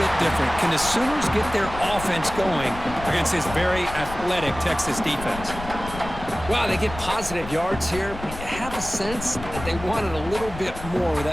different. Can the Sooners get their offense going against this very athletic Texas defense? Wow, they get positive yards here, but you have a sense that they wanted a little bit more with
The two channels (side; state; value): left; noise; rumble, 11 dB below the sound